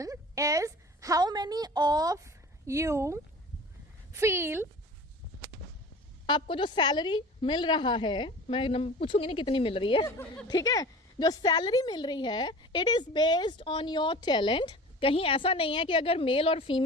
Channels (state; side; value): normal; both; correlation 0.39